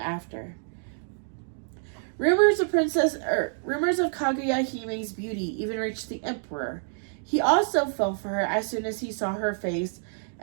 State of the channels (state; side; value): silent; left; digital silence